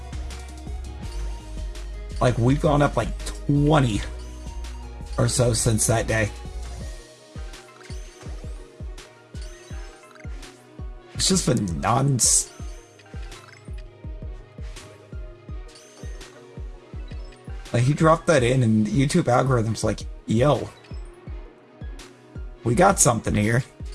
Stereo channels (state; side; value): identical; both; correlation 1.00